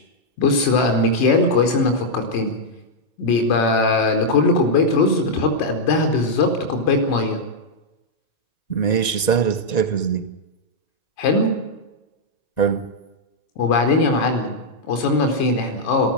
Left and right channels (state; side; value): late; right; 1.9 ms